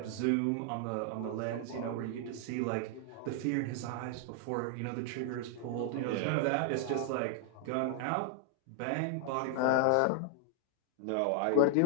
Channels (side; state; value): both; different; correlation 0.00